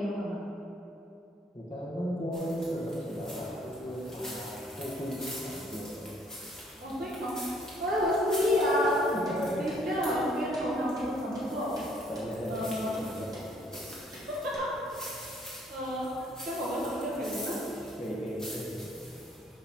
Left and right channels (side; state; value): both; normal; correlation 0.62